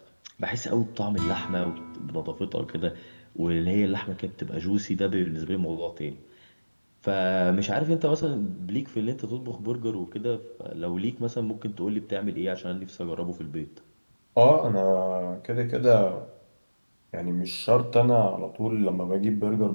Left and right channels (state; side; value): inverted; both; correlation -1.00